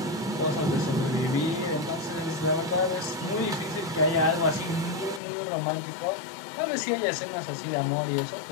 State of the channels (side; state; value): right; drops out; at 5.2 s